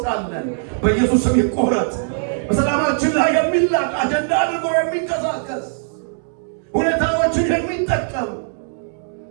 በኢየሱስ ስም ይቆረጥ። በሰላማችን ላይ የሚላቅ አጀንዳ አድርጎ የሚንቀሳቀስ ሁኔታዎችን የሚጠቀም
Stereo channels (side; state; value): left; silent; digital silence